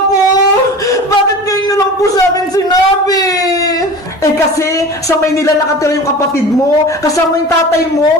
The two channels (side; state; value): both; normal; correlation 0.36